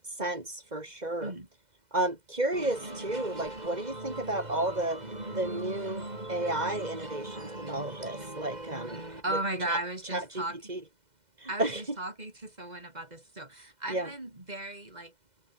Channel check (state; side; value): late; left; 2.0 ms